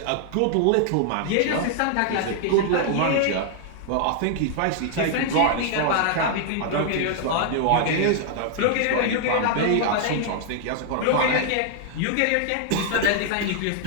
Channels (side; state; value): both; different; correlation 0.00